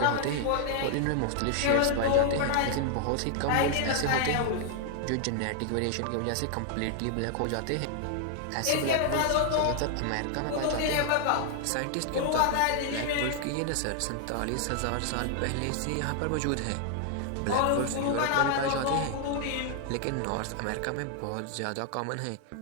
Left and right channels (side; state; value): both; different; correlation 0.00